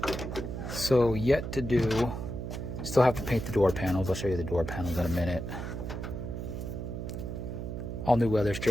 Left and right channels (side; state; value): right; noise; hum, 6 dB below the sound